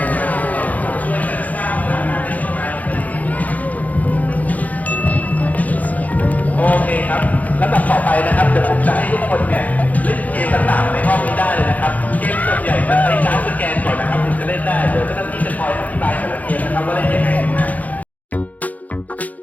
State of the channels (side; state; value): right; late; 0.077 ms